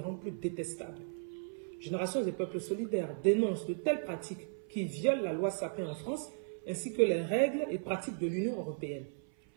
plus détestables. Génération des peuples solidaires dénonce de telles pratiques qui violent la loi Sapin en France, ainsi que les règles et pratiques de l'Union européenne.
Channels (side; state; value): left; silent; 54 dB below the other